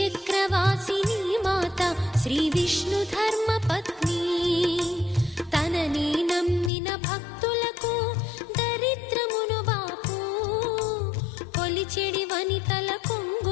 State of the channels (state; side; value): drops out; right; at 6.7 s